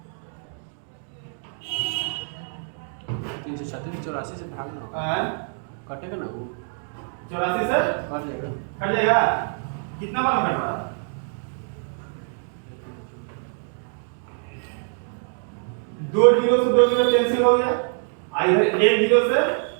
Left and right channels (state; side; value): silent; left; 55 dB below the other